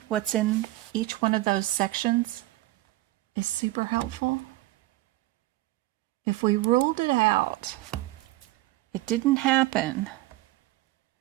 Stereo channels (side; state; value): left; quieter; 17.5 dB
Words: what's in each one of those sections is super helpful. If we ruled it out, it didn't happen,